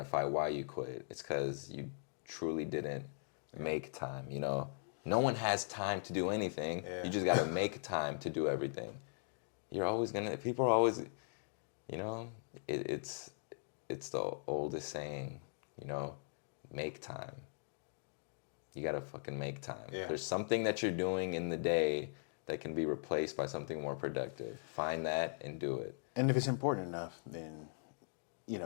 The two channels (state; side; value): silent; right; digital silence